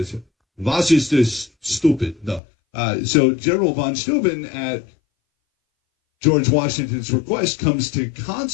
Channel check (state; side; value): drops out; right; at 2.4 s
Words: was ist das stupid? No. So General von Steuben, at George Washington's request, comes to